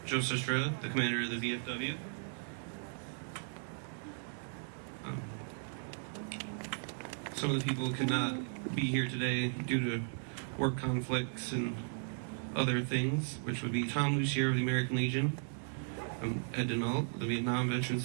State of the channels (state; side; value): silent; left; digital silence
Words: Joseph Estrella, the commander of the VFW. Some of the people could not be here today due to work conflicts and other things, which would be Tom Lucier of the American Legion, Ed Denault of the Vietnam Veterans